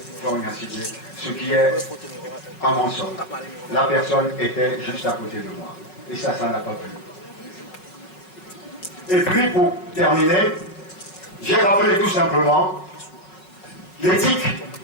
Fognaciné, ce qui est un mensonge. La personne était juste à côté de moi. Et ça n'a pas plu. Et puis, pour terminer, j'ai rappelé tout simplement l'éthique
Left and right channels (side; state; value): right; late; 5.4 ms